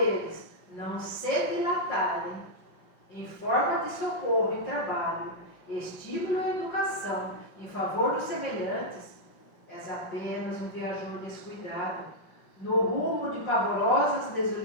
não se dilatarem em forma de socorro e trabalho, estímulo e educação em favor dos semelhantes, és apenas um viajor descuidado no rumo de pavorosas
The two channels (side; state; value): right; late; 5.6 ms